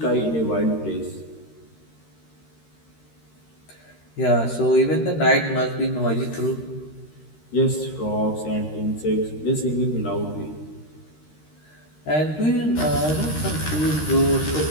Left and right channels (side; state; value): right; late; 13 ms